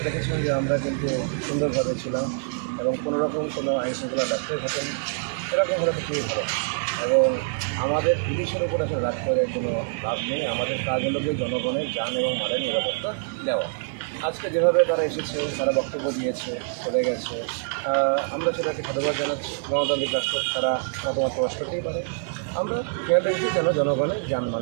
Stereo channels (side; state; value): left; silent; 61 dB below the other